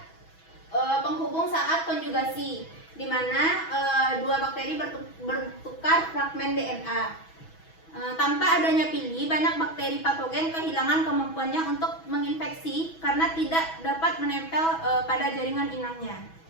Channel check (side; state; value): right; late; 6.1 ms